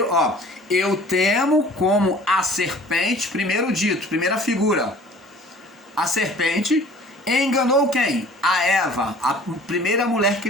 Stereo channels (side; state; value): both; normal; correlation 0.49